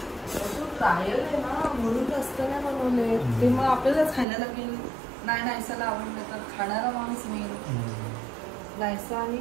ट्रायल आहे ना, म्हणून जास्त नाही बनवले ते. मग आपल्यालाच खायला लागेल. नाही नायसाला आवडलं तर खाणारा माणूस मी. नायसा आणि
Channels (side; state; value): left; drops out; at 4.2 s